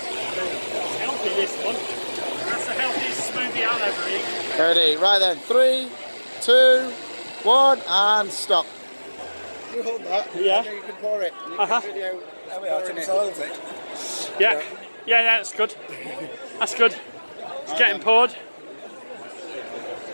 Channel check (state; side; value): inverted; both; correlation -1.00